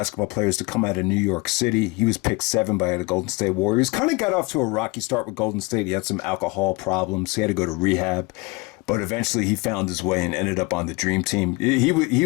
players to come out of New York City. He was picked 7 by the Golden State Warriors. Kind of got off to a rocky start with Golden State. He had some alcohol problems. He had to go to rehab. But eventually he found his way and ended up on the Dream Team. He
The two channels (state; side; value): quieter; right; 25.3 dB